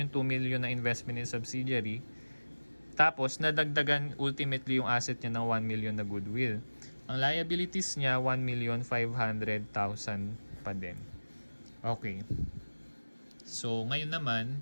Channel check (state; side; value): inverted; both; correlation -1.00